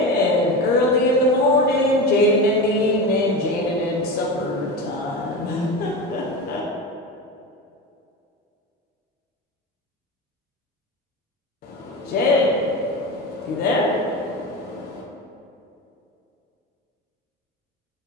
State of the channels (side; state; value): both; normal; correlation 0.24